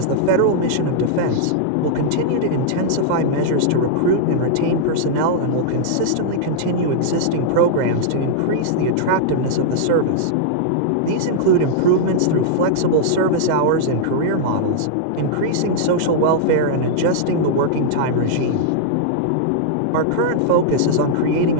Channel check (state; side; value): different; both; correlation -0.02